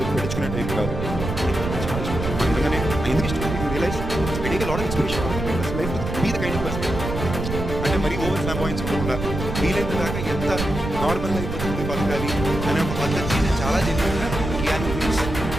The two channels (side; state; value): right; noise; rumble, 5 dB below the sound